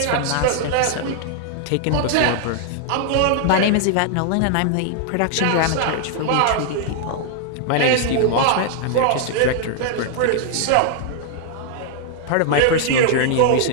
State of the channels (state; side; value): different; both; correlation 0.00